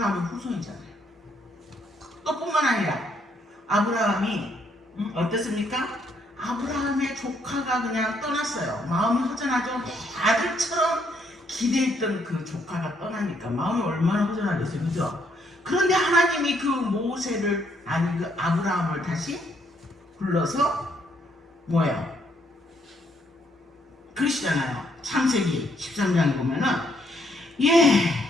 후손이잖아요. 또 뿐만 아니라 아브라함이 어땠습니까? 아브라함의 조카가 그냥 떠났어요. 마음이 허전하죠. 아들처럼 기대했던 그 조카가 떠나니까 마음이 얼마나 허전하겠어요, 그죠? 그런데 하나님이 그 모세를, 그 아브라함을 다시 불러서 뭐예요? 그러시잖아요. 창세기 13장에 보면은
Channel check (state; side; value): normal; both; correlation 0.71